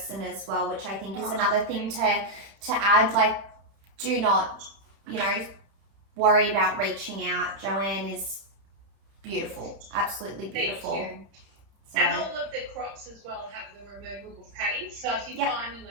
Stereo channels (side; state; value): left; late; 31 ms